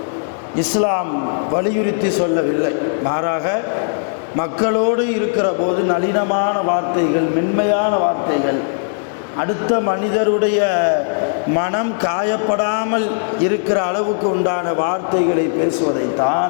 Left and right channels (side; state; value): right; silent; digital silence